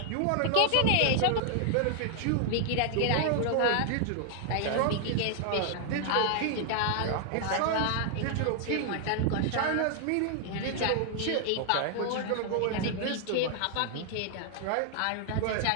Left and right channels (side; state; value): both; different; correlation 0.00